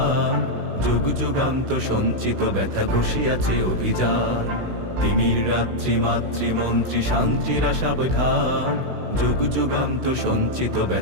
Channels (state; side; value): late; left; 16 ms